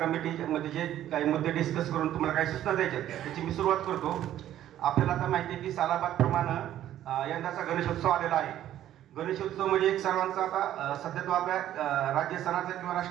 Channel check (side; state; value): left; quieter; 12.2 dB